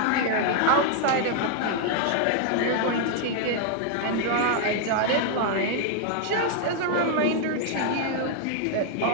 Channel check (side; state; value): both; different; correlation 0.00